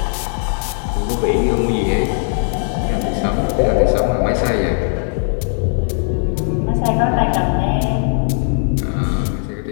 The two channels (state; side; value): silent; right; 67 dB below the other